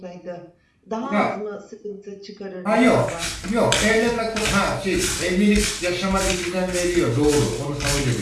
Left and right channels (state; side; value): identical; both; correlation 1.00